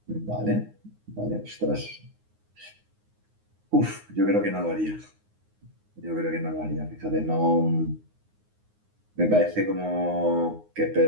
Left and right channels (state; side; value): late; left; 9.6 ms